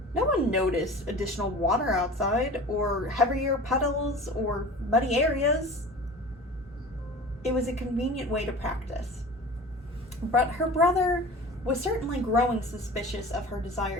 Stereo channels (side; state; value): both; normal; correlation 0.38